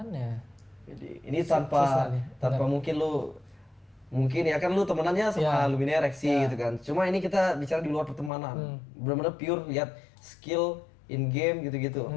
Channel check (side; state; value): right; drops out; at 8.3 s